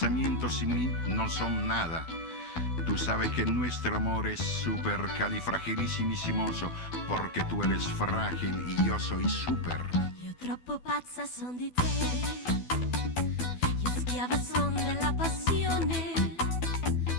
sin mí no son nada. Tú sabes que nuestro amor es supercalifragilissimissimoso porque tú eres frágil y yo soy super. Io troppo pazza son di te, io schiava son della passione,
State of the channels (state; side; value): late; right; 12 ms